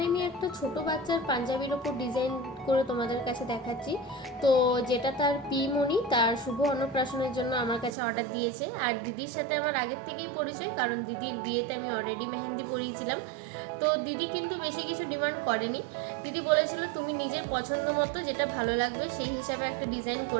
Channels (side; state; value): left; drops out; at 8.0 s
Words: আমি একটা ছোট বাচ্চার পাঞ্জাবির ওপর ডিজাইন করে তোমাদের কাছে দেখাচ্ছি। তো যেটা তার পিমণি তার শুভ অন্নপ্রাশনের জন্য আমার কাছে অর্ডার দিয়েছে। আর দিদির সাথে আমার আগের থেকেই পরিচয়, কারণ দিদির বিয়েতে আমি অলরেডি মেহেন্দি পরিয়েছিলাম। তো দিদি কিন্তু বেশি কিছু ডিমান্ড করেনি। দিদি বলেছিল তুমি নিজের পছন্দ মতো যেটা ভালো লাগবে সেই হিসাবে একটা ডিজাইন